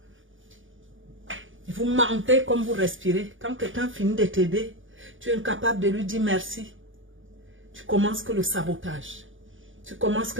Et vous mentez comme vous respirez. Quand quelqu'un finit de t'aider, tu es incapable de lui dire merci. Tu commences que le sabotage. Tu commences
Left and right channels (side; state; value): left; late; 0.57 ms